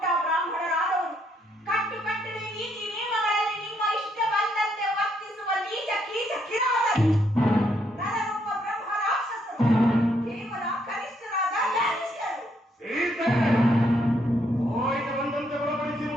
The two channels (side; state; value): both; normal; correlation 0.73